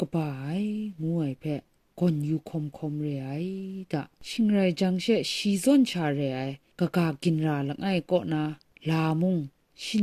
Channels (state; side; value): identical; both; correlation 1.00